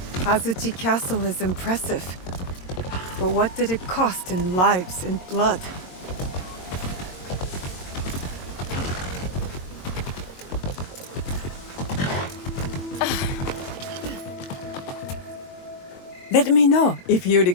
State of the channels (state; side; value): late; right; 22 ms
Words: Azuchi Castle is impressive. But what did it cost in lives and blood? Let me know if you